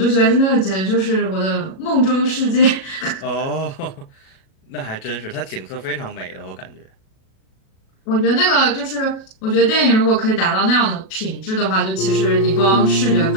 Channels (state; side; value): late; right; 37 ms